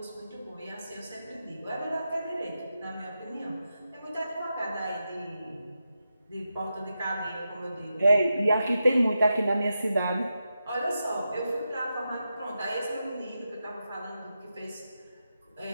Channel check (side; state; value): both; inverted; correlation -0.89